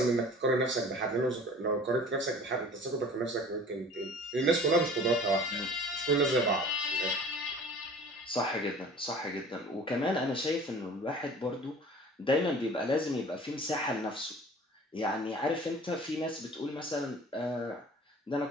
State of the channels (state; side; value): normal; both; correlation 0.45